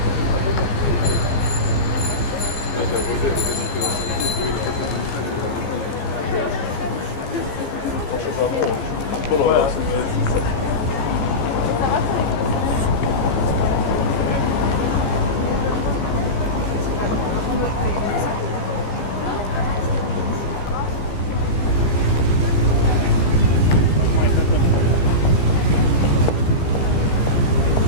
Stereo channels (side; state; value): right; late; 15 ms